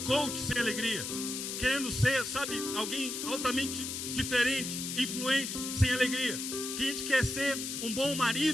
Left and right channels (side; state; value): left; noise; hiss, 4 dB below the sound